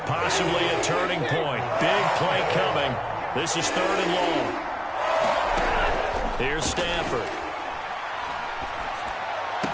Possibly a turning point. Big play coming. This is 3rd and long. Here's Stafford.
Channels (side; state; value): both; identical; correlation 1.00